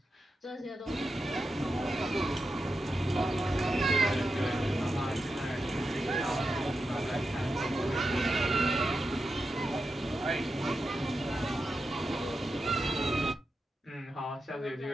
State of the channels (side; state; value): both; normal; correlation 0.88